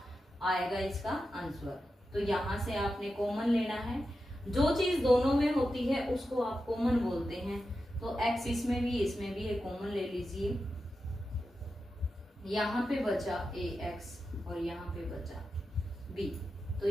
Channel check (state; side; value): normal; both; correlation 0.90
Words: आएगा इसका आंसर। तो यहां से आपने कॉमन लेना है। जो चीज दोनों में होती है उसको आप कॉमन बोलते हैं। तो x इसमें भी है, कॉमन ले लीजिए। यहाँ पे बचा ax और यहाँ पे बचा b। तो